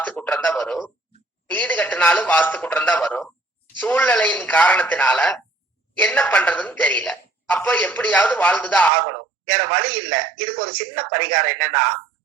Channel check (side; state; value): left; drops out; at 8.9 s